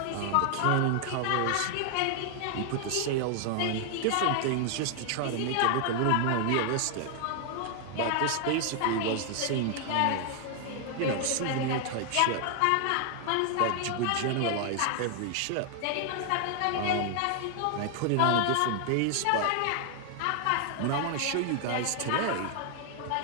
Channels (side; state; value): both; different; correlation 0.00